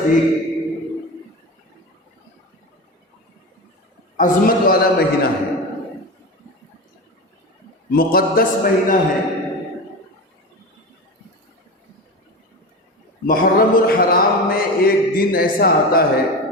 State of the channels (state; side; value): normal; both; correlation 0.25